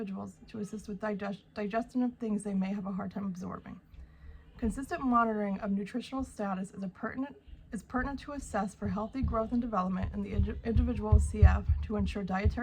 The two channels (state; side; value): identical; both; correlation 1.00